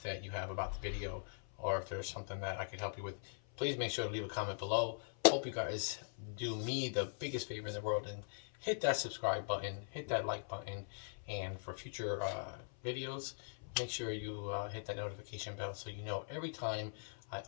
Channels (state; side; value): silent; right; 50 dB below the other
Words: that you have about the video, or if there's something that I could help you with, please make sure to leave a comment below. Hope you guys do me the biggest favor in the world and hit that subscribe button, hit that like button, and for future videos, make sure you hit that notification bell so you know every time I